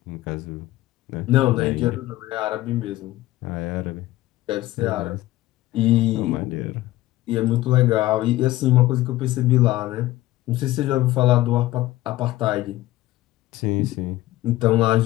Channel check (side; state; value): right; quieter; 16.6 dB